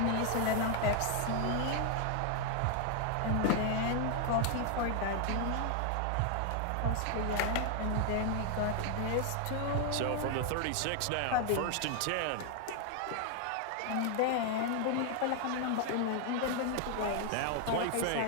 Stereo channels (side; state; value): both; different; correlation 0.00